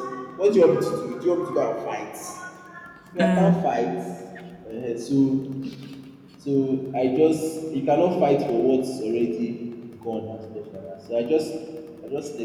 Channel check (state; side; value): identical; both; correlation 1.00